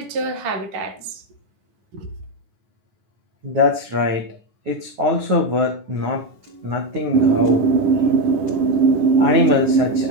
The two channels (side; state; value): left; late; 10 ms